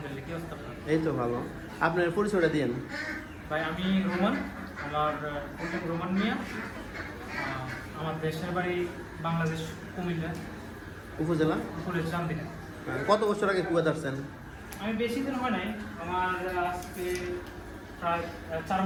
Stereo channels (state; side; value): identical; both; correlation 1.00